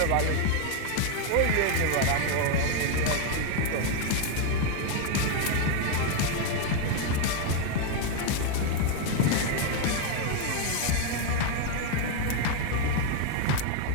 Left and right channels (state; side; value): different; both; correlation 0.01